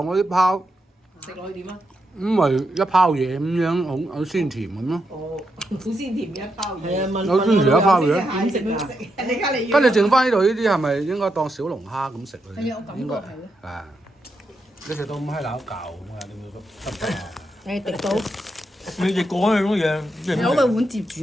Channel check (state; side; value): normal; both; correlation 0.83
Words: 啲泡，食落去點啊？咁咪一泡嘢咁樣，好鮮甜咁咯。哦，好鮮甜嘅一包嘢。係啊，問有鮮甜一包嘢點食啊？你家你跟住剩翻呢度呢啲係咪應該當小龍蝦咁食咧？係啊，我感覺係咯。啊！你食到咁閪撈舊咁啊？你會得唔得啊？誒滴到，你食過嗰種嘢，攞個碗接住